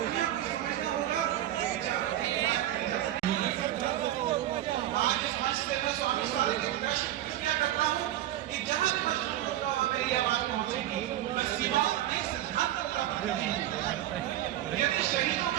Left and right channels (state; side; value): quieter; left; 13.2 dB